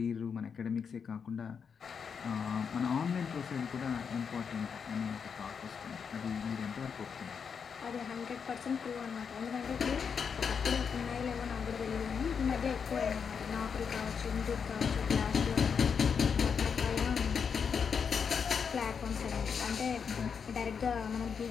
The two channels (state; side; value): quieter; right; 6.4 dB